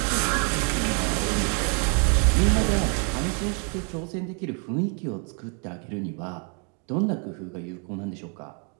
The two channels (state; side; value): quieter; left; 38.4 dB